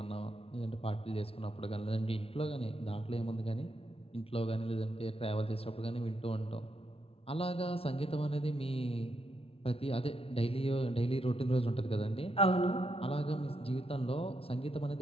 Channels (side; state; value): right; late; 0.27 ms